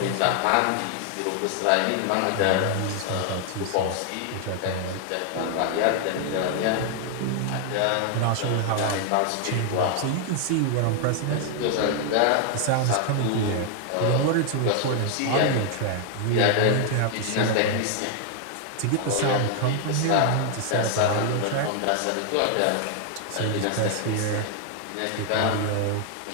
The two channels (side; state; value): both; different; correlation 0.00